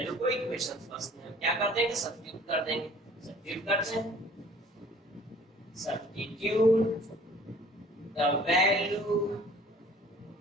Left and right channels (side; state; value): both; normal; correlation 0.51